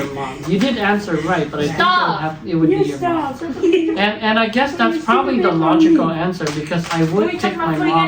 mom. You did answer right, but I think it would be your mom. And I guess that's probably the logical answer because I would pick my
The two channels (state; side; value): identical; both; correlation 1.00